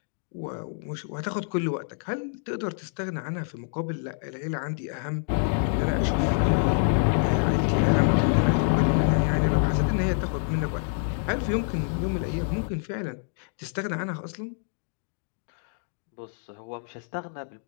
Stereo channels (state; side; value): silent; right; 60 dB below the other